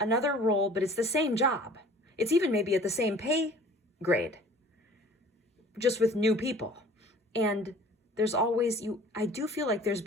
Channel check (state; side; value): normal; both; correlation 0.49